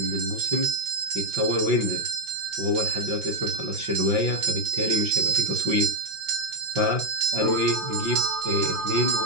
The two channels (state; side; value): late; left; 5.8 ms